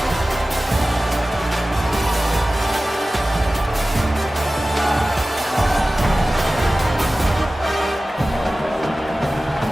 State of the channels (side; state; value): both; normal; correlation 0.96